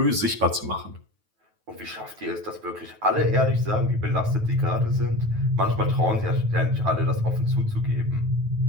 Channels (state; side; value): late; left; 9.2 ms